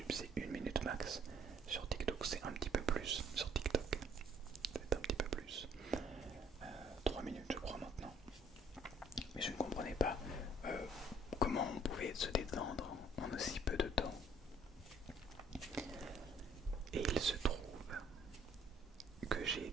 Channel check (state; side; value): normal; both; correlation 0.61